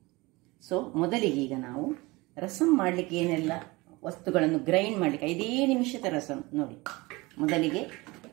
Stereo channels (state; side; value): quieter; left; 22.9 dB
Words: ಸೊ ಮೊದಲಿಗೆ ಈಗ ನಾವು ರಸಮ್ ಮಾಡಲಿಕ್ಕೆ ಏನೆಲ್ಲ ವಸ್ತುಗಳನ್ನು ಗ್ರೈಂಡ್ ಮಾಡಲಿಕ್ಕೆ 5 ನಿಮಿಷದ ರಸಮ್ ನೋಡಿ. ಮೊದಲಿಗೆ